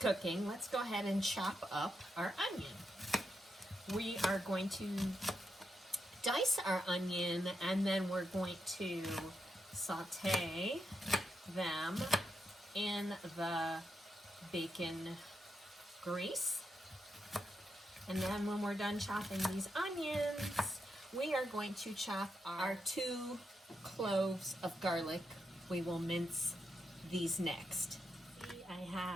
let's go ahead and chop up our onion. We are going to dice our onion, and then we're going to saute them in the bacon grease. And then when we're done chopping these onions, we are going to chop our 2 cloves of garlic. We will mince these next. I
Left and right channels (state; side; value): normal; both; correlation 0.84